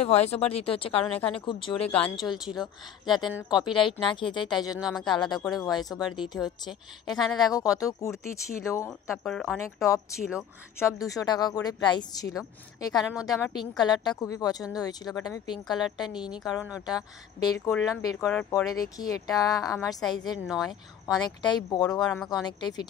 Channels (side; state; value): right; quieter; 9.1 dB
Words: ভয়েস ওভার দিতে হচ্ছে, কারণ এখানে খুব জোরে গান চলছিল, যাতে কপিরাইট না খেয়ে যায়, তাই জন্য আমাকে আলাদা করে ভয়েস ওভার দিতে হচ্ছে। এখানে দেখো কত কুর্তি ছিল, তারপর অনেক টপ ছিল, সব 200 টাকা করে প্রাইস ছিল। এখানের মধ্যে আমার পিঙ্ক কালারটা খুবই পছন্দ হয়েছিল, বাট আমি পিঙ্ক কালারটা নিইনি, কারণ ওটা বের করলাম, বের করার পরে দেখি এটা আমার সাইজের নয়, অনেকটাই বড়, আর আমাকে অনেকটাই